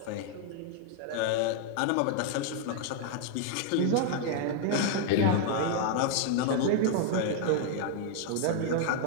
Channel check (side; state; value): both; different; correlation 0.00